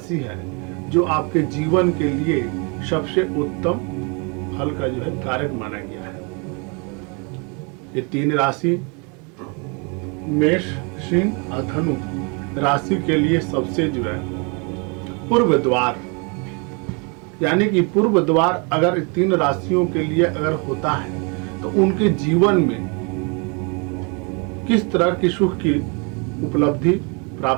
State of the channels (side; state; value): left; quieter; 33.4 dB